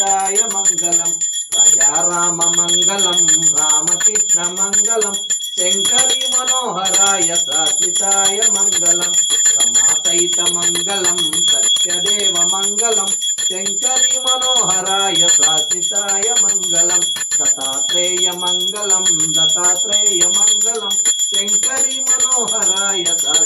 మంగళం రాజారామ మంగళం రామకృష్ణ మంగళం శంకరి మనోహరాయ శాశ్వతాయ మంగళం సమాసైత మంగళం సత్యదేవ మంగళం శంకరి మనోహరాయ శాశ్వతాయ మంగళం దత్తాత్రేయ మంగళం శంకరి మనోహరాయ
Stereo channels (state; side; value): identical; both; correlation 1.00